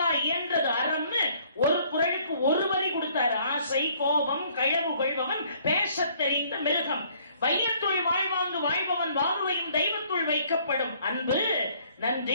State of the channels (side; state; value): both; inverted; correlation -0.61